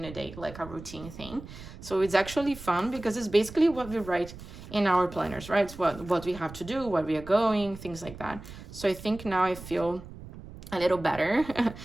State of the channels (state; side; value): noise; right; rumble, 15 dB below the sound